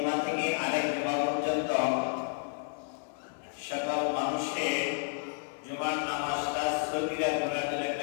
থেকে আরেক জুমা পর্যন্ত সকল মানুষের জুমার নামাজটা সগীরা গুনাহের জন্য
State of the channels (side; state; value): right; silent; 57 dB below the other